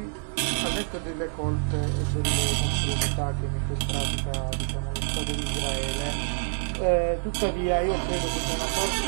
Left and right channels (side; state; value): left; silent; 60 dB below the other